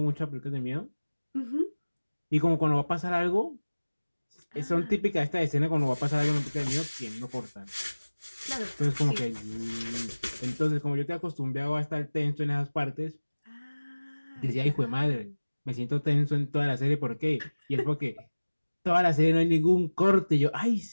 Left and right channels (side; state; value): both; inverted; correlation -1.00